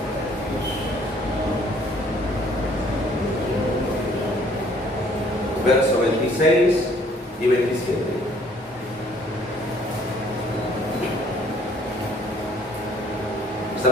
Verso 26 y 27.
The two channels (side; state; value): both; normal; correlation 0.60